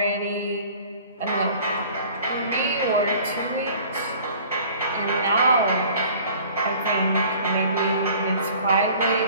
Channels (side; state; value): both; inverted; correlation -0.49